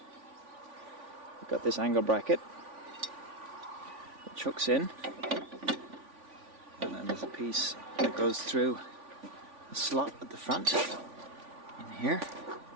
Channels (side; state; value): left; late; 3.5 ms